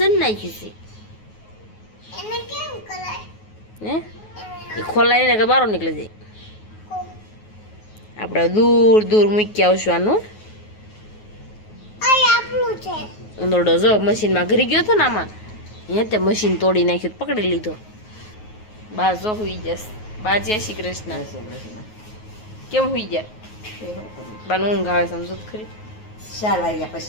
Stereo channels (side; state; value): right; late; 9.4 ms